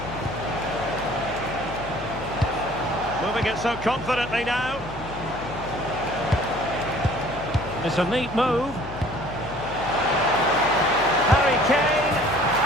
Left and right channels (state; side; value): noise; left; hum, 14 dB below the sound